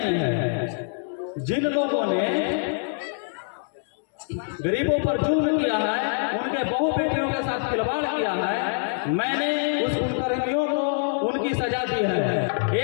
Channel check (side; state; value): right; silent; digital silence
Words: है। जिन लोगों ने गरीबों पर जुल्म किया है, उनके बहु बेटियों के साथ खिलवाड़ किया है, मैंने उस कुकर्मियों को उनकी सजा दी है।